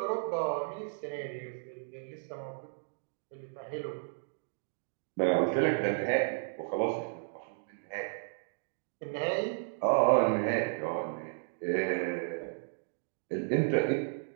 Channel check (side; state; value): left; silent; digital silence